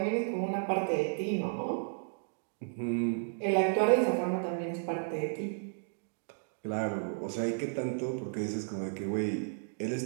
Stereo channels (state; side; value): silent; left; digital silence